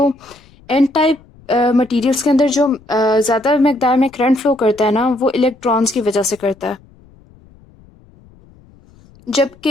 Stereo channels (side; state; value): left; noise; rumble, 27 dB below the sound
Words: एन टाइप मटीरियल्स के अंदर जो ज़्यादा मकदार में करंट फ्लो करता है ना, वो इलेक्ट्रॉन्स की वजह से करता है,